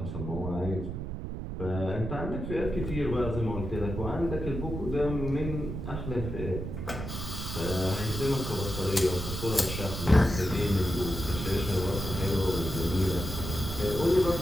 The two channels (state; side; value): noise; right; rumble, 5 dB below the sound